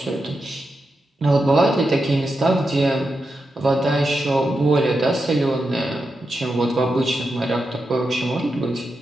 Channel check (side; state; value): both; normal; correlation 0.88